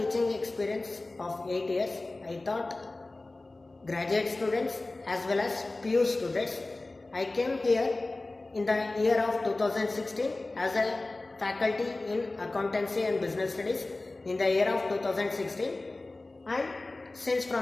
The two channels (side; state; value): right; quieter; 3.0 dB